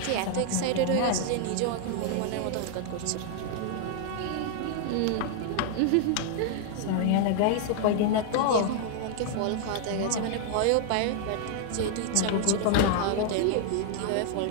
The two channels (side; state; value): both; different; correlation 0.00